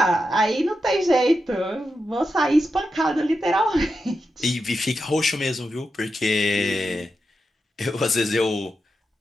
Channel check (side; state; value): both; normal; correlation 0.88